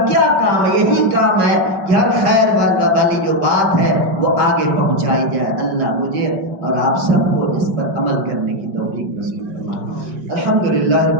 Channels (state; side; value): late; left; 5.4 ms